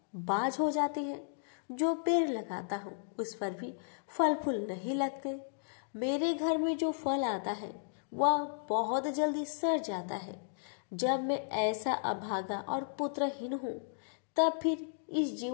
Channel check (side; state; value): right; silent; digital silence